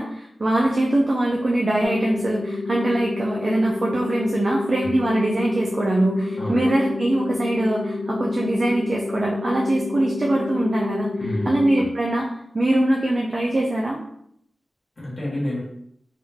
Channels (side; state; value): both; normal; correlation 0.95